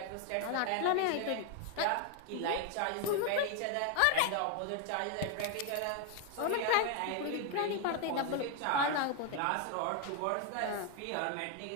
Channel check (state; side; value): different; both; correlation 0.01